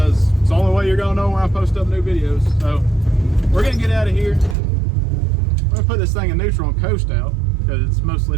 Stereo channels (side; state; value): left; drops out; at 4.5 s